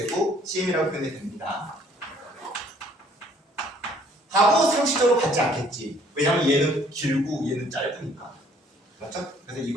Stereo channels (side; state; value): both; normal; correlation 0.60